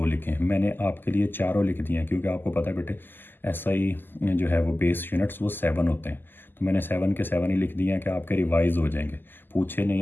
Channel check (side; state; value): right; late; 0.093 ms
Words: लिखें। मैंने आपके लिए चारों लिख दिए हैं क्योंकि आपको पता है बेटे SI जो है वो बेस यूनिट्स वो 7 होते हैं। तो मैंने 7 के 7 ही लिख दिए हैं कि आपके रिवाइज हो जाएंगे। पूछे नहीं